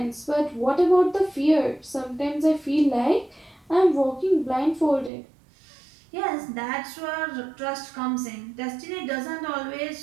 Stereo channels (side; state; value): left; drops out; at 5.1 s